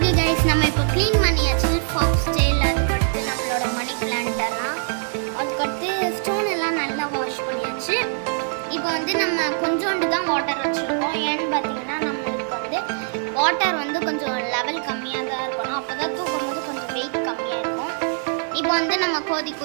கைஸ், நம்ம இப்போ க்ளீன் பண்ணியாச்சு ஃபாக்ஸ் ஸ்டைல். அதுக்கடுத்து நம்மளோட மணி பிளான்ட்டெல்லாம், அதுக்கடுத்து ஸ்டோன் எல்லாம் நல்லா வாஷ் பண்ணியாச்சு. இப்போ வந்து நம்ம கொஞ்சோண்டு தான் வாட்டர் வச்சுருக்கோம். ஏன்னு பார்த்தீங்கன்னா நம்மளுக்கு வந்து வாட்டர் வந்து கொஞ்சம் லெவல் கம்மியாக தான் இருக்கணும். அப்போ தான் தூக்கும் போது கொஞ்சம் வெயிட் கம்மியாக இருக்கும். இப்போ வந்து நம்ம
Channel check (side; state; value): left; silent; 64 dB below the other